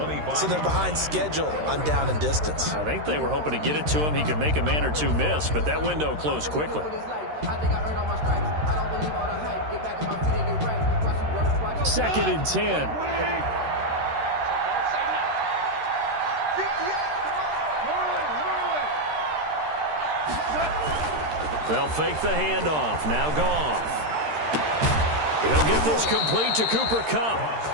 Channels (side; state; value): left; late; 13 ms